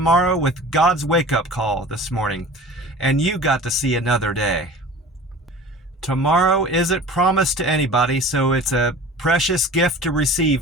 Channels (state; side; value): normal; both; correlation 0.40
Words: with God's wake-up call this morning. And you got to see another day. Tomorrow isn't promised to anybody, so it's a precious gift to